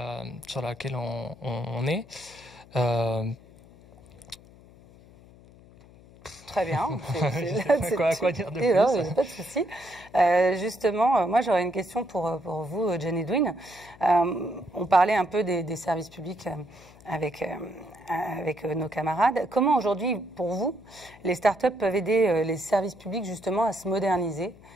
sur laquelle on est. Très bien. Quoi dire de plus? Non, pas de souci. Justement, moi j'aurais une question pour vous, John Edwin. On parlait un peu des services publics avec nos camarades. Comment aujourd'hui, pour vous, les startups peuvent aider les services publics justement à se moderniser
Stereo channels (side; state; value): left; noise; hum, 23 dB below the sound